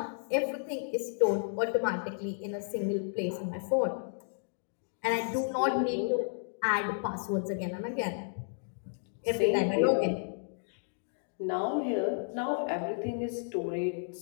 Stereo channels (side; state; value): right; silent; digital silence